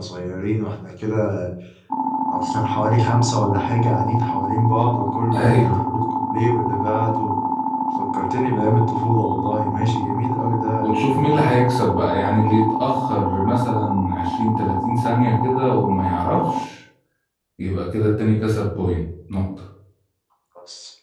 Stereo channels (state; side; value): identical; both; correlation 1.00